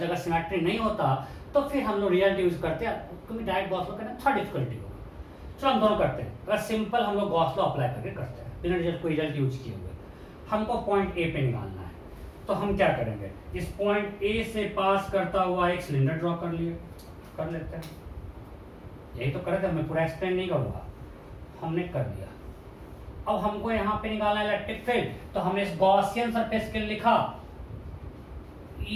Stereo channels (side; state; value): both; identical; correlation 1.00